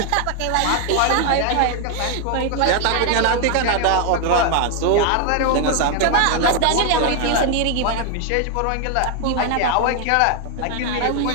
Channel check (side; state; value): both; different; correlation 0.01